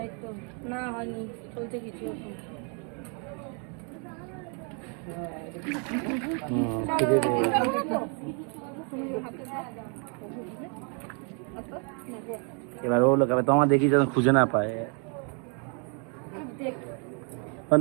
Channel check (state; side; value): quieter; left; 38.5 dB